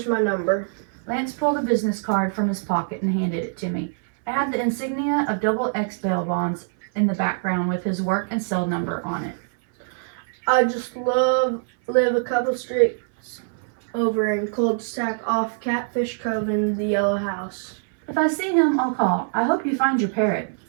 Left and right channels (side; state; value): left; silent; 61 dB below the other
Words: my number. Lance pulled a business card from his pocket and handed it to me. It had the insignia of XX bail bonds in the background with his work and cell number on it. I just live a couple streets over in cul-de-sac off Catfish Cove in the Yellow House. If I see him, I'll call. I hope you find your parrot.